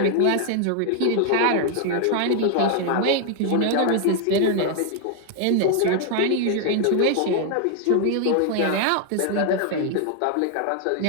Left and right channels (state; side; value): different; both; correlation 0.00